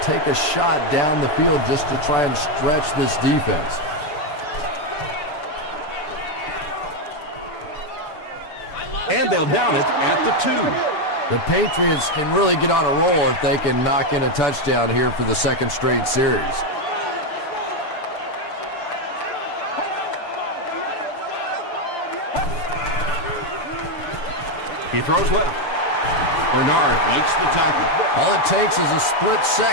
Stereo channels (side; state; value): right; late; 6.8 ms